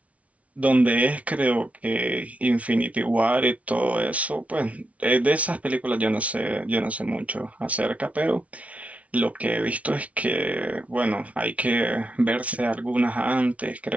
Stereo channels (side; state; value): left; late; 0.066 ms